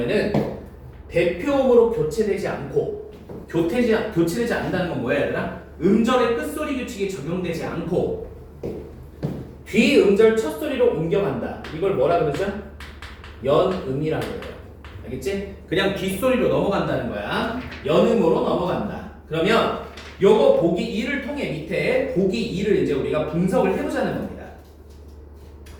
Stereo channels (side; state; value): both; identical; correlation 1.00